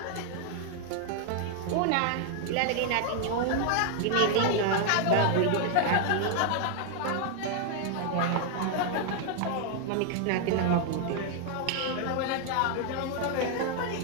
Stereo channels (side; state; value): both; different; correlation 0.00